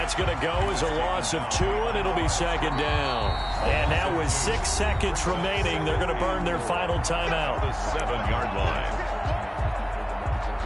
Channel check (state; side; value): identical; both; correlation 1.00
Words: going to go as a loss of 2, and it'll be 2nd down. And now with 6 seconds remaining, they're going to burn their final timeout. The 7-yard line.